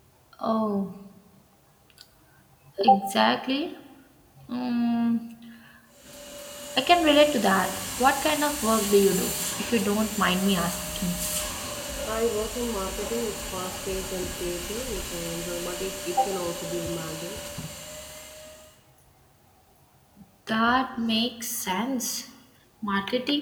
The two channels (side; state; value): both; identical; correlation 1.00